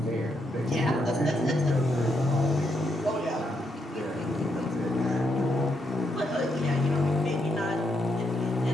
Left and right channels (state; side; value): normal; both; correlation 0.79